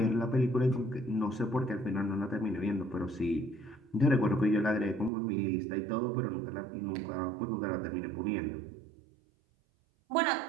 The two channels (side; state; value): left; drops out; at 5.1 s